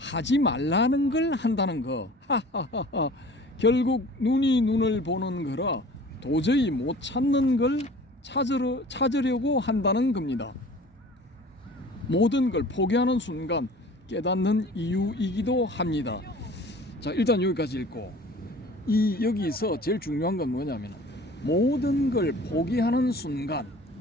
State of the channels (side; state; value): both; normal; correlation 0.45